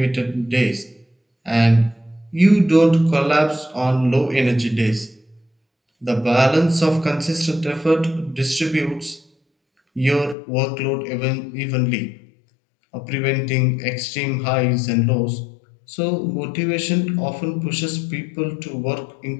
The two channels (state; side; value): drops out; right; at 10.4 s